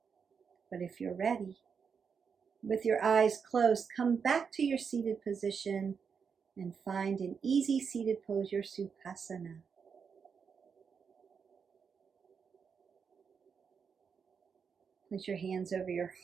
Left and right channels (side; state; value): left; quieter; 6.2 dB